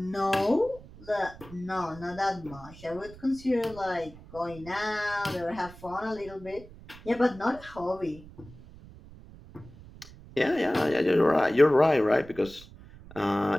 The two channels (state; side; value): noise; right; rumble, 19 dB below the sound